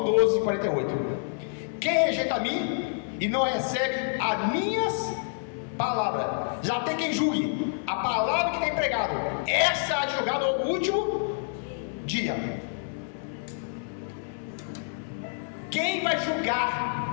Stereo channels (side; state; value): right; silent; 59 dB below the other